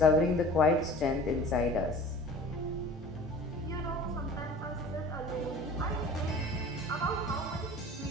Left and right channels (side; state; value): both; normal; correlation 0.42